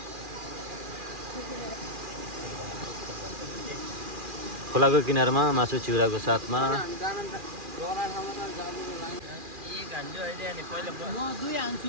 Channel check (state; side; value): late; left; 2.4 ms